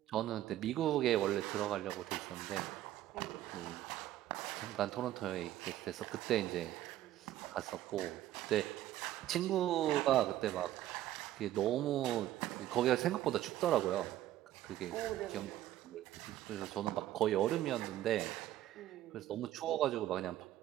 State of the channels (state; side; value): quieter; left; 13.5 dB